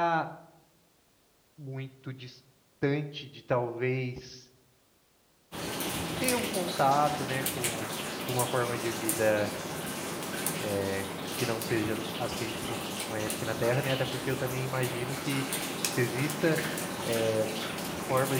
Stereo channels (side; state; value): both; identical; correlation 1.00